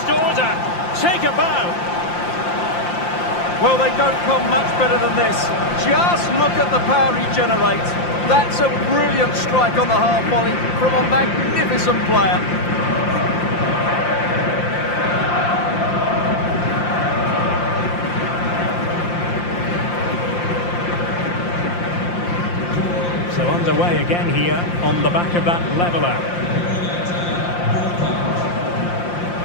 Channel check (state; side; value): late; right; 5.7 ms